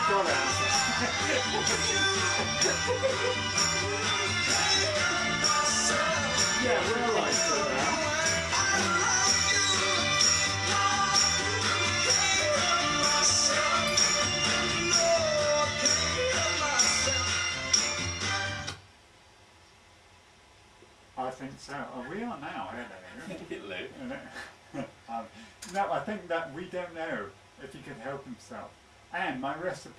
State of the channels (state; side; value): identical; both; correlation 1.00